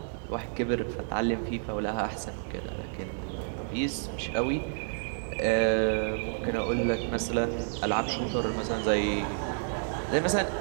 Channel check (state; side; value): silent; left; digital silence